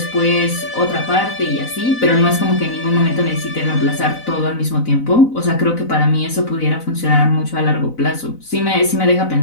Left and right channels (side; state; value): right; late; 4.0 ms